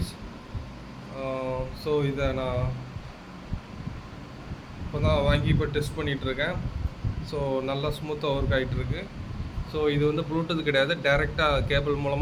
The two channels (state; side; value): identical; both; correlation 1.00